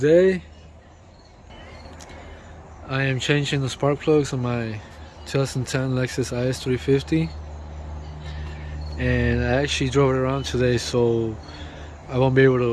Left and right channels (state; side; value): identical; both; correlation 1.00